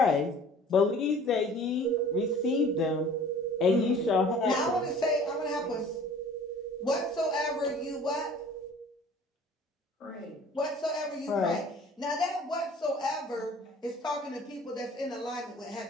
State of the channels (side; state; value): both; normal; correlation 0.48